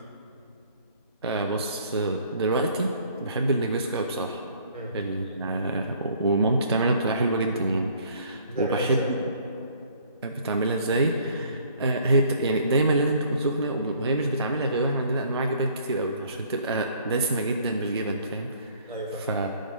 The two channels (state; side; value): inverted; both; correlation -0.58